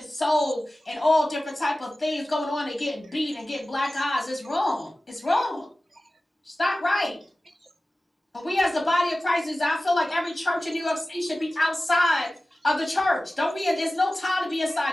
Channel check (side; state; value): both; normal; correlation 0.96